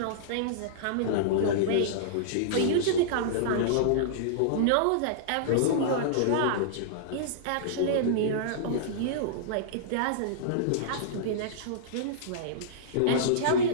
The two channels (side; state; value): both; different; correlation -0.03